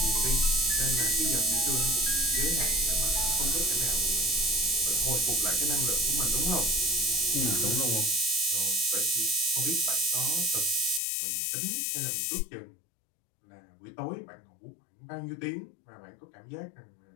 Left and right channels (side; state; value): right; drops out; at 11.0 s